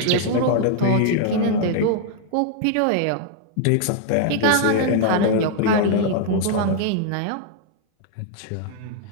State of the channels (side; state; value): both; different; correlation 0.00